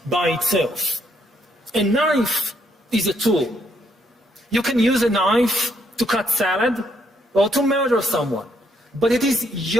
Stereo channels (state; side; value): normal; both; correlation 0.73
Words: by itself. A knife is a tool. You can use a knife to cut salad or to murder someone, but it is